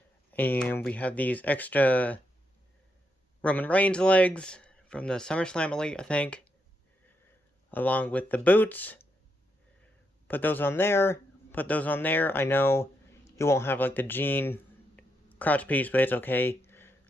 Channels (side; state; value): both; normal; correlation 0.81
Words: and we have these extra Roman Reigns legs from the SummerSlam Elite, I think, along with the boots. Put those on there. I know you won't have like the jean crotch piece, but it's okay.